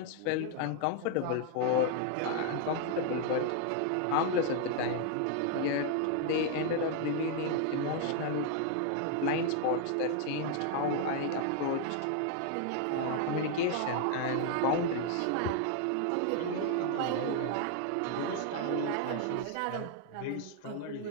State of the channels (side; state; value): both; different; correlation 0.00